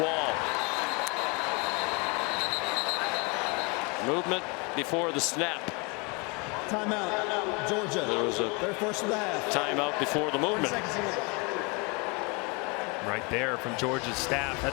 Wall. Movement before the snap. Timeout, Georgia. There was a their first of the half. Timeout before the movement. Right there from Georgia's staff.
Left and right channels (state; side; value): quieter; right; 30.4 dB